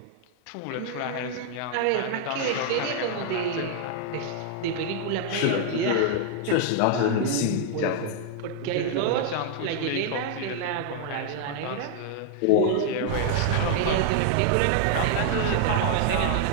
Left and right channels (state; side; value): different; both; correlation 0.00